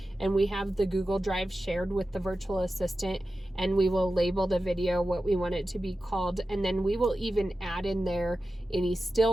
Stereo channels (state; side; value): normal; both; correlation 0.93